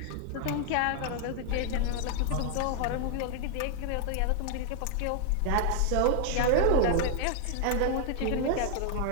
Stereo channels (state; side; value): different; both; correlation 0.00